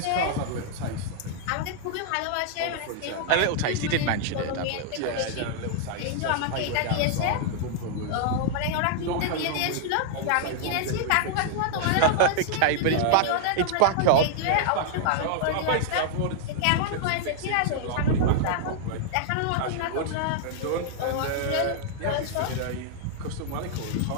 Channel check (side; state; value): both; different; correlation -0.01